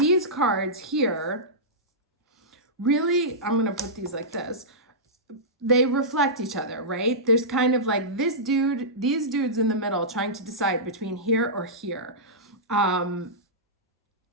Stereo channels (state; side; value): normal; both; correlation -0.15